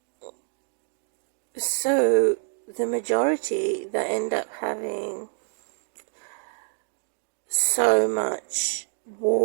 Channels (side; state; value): left; silent; digital silence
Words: So the majority that end up having so much